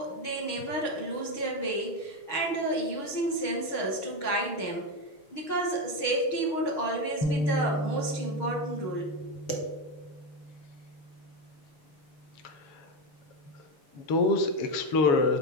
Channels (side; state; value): right; late; 6.4 ms